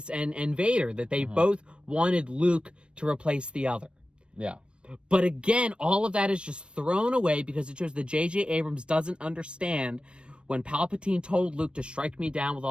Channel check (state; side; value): late; left; 0.057 ms